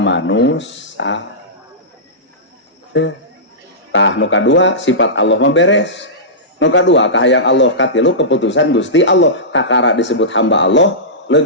tah nu kadua sifat Allah mah beres. Nu kadua kahayang Allah, katilu keputusan Gusti Allah. Kakara disebut hamba Allah,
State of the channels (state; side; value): normal; both; correlation -0.17